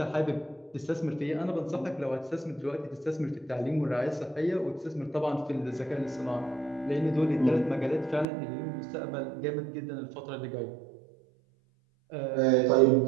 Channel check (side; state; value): left; drops out; at 8.2 s